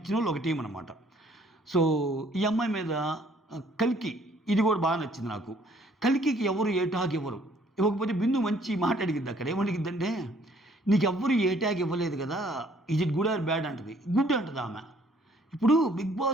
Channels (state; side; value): normal; both; correlation 0.61